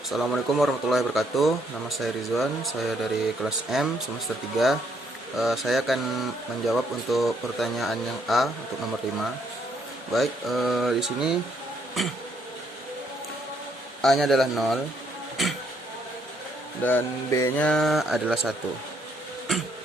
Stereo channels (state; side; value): normal; both; correlation 0.71